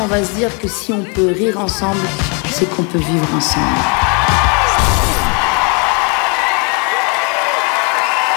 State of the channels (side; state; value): right; quieter; 34.7 dB